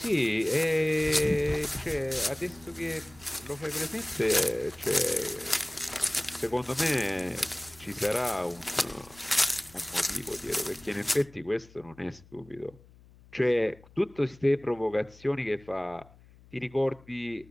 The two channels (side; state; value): left; noise; hum, 24 dB below the sound